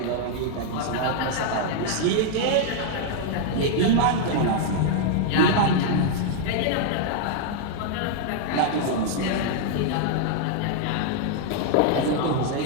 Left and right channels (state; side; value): different; both; correlation 0.00